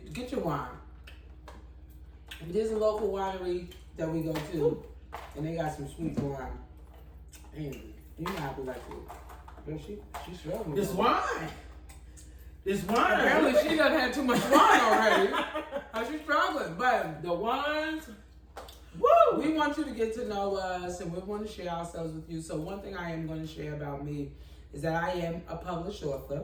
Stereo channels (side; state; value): both; identical; correlation 1.00